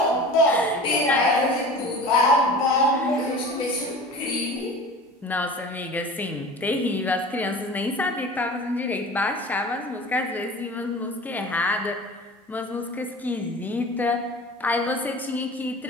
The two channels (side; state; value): both; normal; correlation 0.38